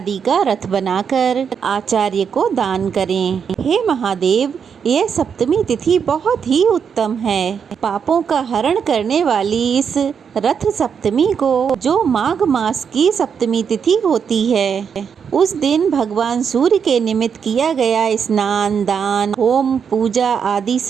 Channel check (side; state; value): left; quieter; 6.9 dB